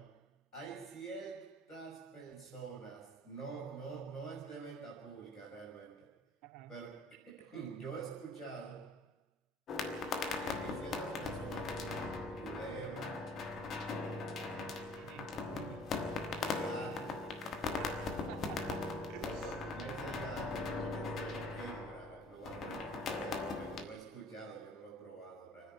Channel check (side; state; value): both; normal; correlation 0.52